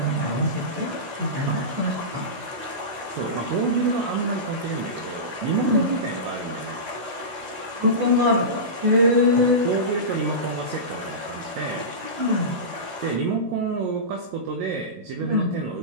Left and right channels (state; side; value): late; left; 16 ms